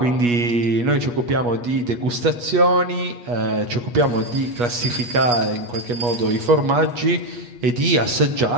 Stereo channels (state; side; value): late; left; 8.3 ms